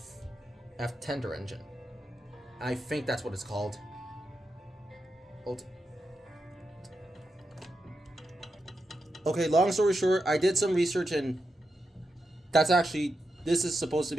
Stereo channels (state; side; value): normal; both; correlation 0.87